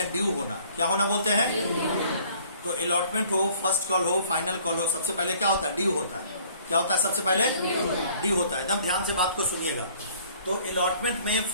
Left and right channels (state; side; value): inverted; both; correlation -0.56